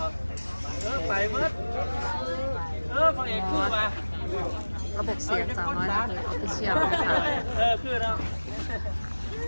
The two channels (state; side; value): inverted; both; correlation -1.00